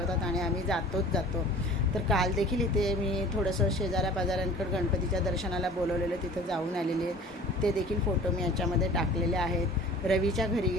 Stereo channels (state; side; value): normal; both; correlation 0.44